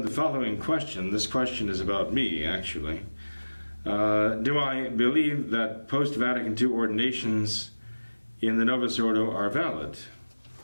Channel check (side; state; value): both; inverted; correlation -1.00